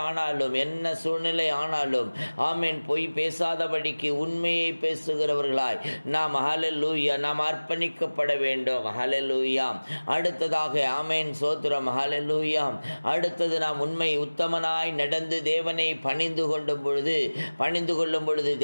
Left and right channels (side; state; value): both; inverted; correlation -1.00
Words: ஆனாலும், என்ன சூழ்நிலை ஆனாலும், ஆமென், பொய் பேசாதபடிக்கு உண்மையை பேசுகிறவர்களாய் நாம், ஹல்லேலூயா, நாம் அர்ப்பணிக்கப்பட வேண்டும். ஹல்லேலூயா. அடுத்ததாக, ஆமென், சோத்திரம், ஹல்லேலூயா, அடுத்தது நாம் உண்மை உத்தமனாய் நடந்து தேவனை பணிந்து கொள்ளும் பொழுது